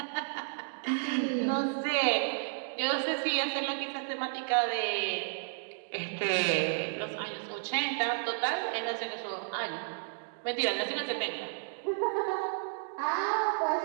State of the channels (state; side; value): silent; left; digital silence